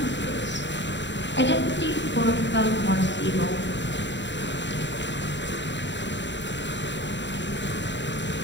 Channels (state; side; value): late; right; 0.53 ms